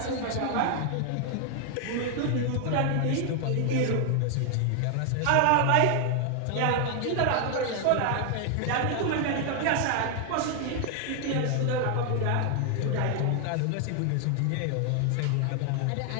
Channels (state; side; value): different; both; correlation 0.00